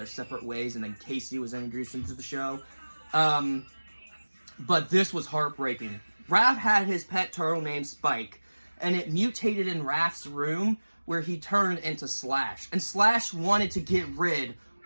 separate ways, and then Casey was introduced into the show. But this was heartbreaking. Raph had his pet turtle named Spike, and it mutated in Raph's room, where he turned into Slash. And Slash wanted to get rid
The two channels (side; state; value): both; inverted; correlation -1.00